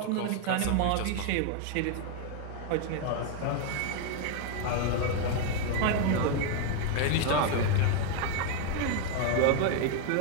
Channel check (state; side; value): different; both; correlation 0.01